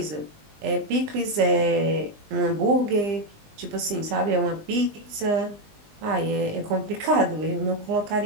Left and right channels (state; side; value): late; left; 20 ms